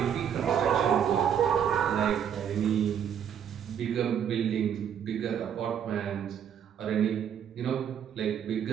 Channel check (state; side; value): quieter; left; 8.6 dB